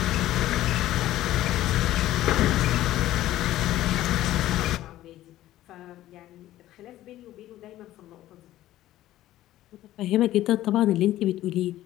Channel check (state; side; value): quieter; right; 14.4 dB